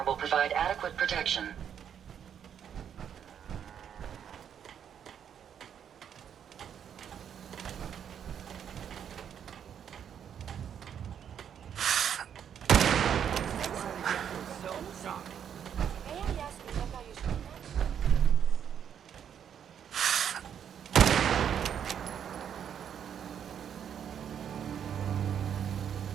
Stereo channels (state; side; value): quieter; left; 8.6 dB